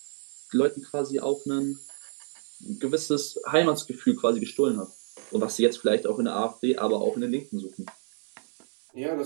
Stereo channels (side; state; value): left; silent; 59 dB below the other